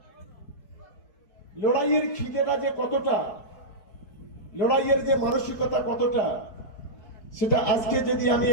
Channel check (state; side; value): late; right; 4.6 ms